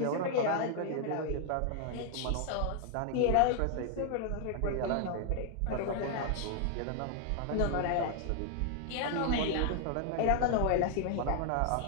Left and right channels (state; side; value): different; both; correlation 0.00